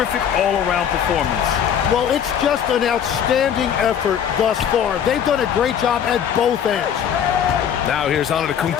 all-around performance. Well, it's just an outstanding effort thus far. They've done a great job at both ends. Now here's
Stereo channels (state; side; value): quieter; right; 8.6 dB